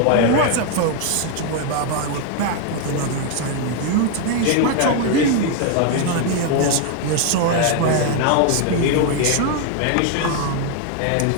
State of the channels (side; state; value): both; different; correlation 0.01